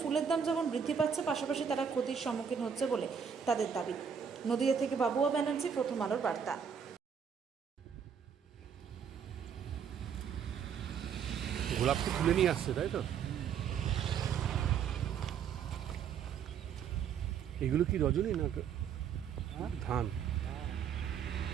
ফুলের দাম যেমন বৃদ্ধি পাচ্ছে, পাশাপাশি তারা ক্ষতির সম্মুখীন হচ্ছে বলে তাদের দাবি। নদিয়া থেকে বাবুয়া ব্যানার্জি, প্রথম আলোর বার্তা। গোলাপকে তুলে নিয়ে আসছে, তাই তো? এগুলো কি রজনী না ধান?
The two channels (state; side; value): quieter; left; 7.4 dB